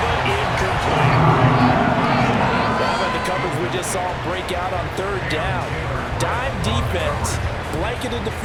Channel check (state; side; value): identical; both; correlation 1.00